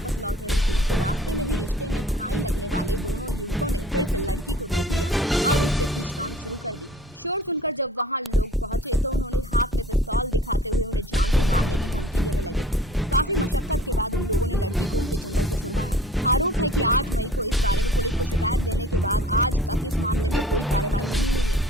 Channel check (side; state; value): both; normal; correlation 0.48